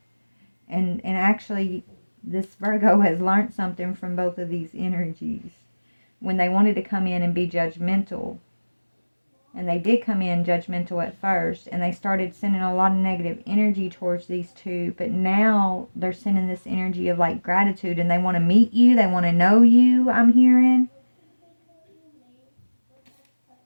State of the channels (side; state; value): both; inverted; correlation -1.00